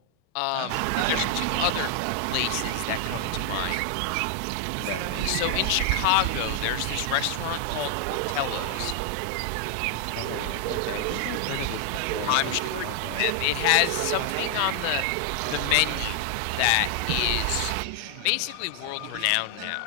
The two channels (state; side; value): different; both; correlation 0.00